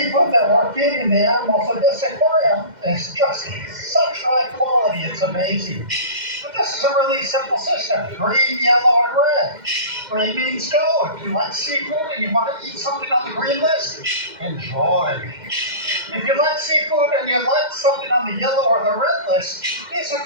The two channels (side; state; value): left; late; 2.1 ms